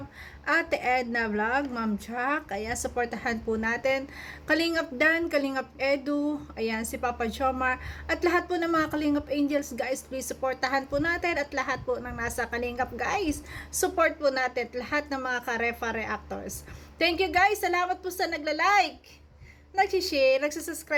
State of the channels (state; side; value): identical; both; correlation 1.00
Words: Ate Edna Vlog, Ma'am Jack. Ayan, supportahan po natin. Kalingap Dan, Kalingap Edu, ayan, si Papa Jomar, at lahat po ng mga Kalingap Angels, guys, please supportahan po natin, at lahat po ng nasa Kalingap, guys, support po natin, lahat ng mga Karefa reactors. Thank you guys, salamat po sa nagla-like, nag-share,